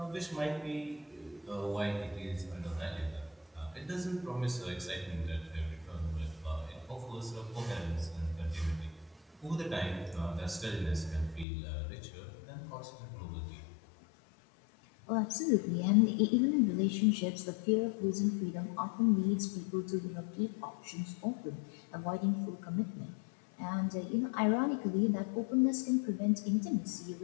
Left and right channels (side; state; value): right; drops out; at 11.5 s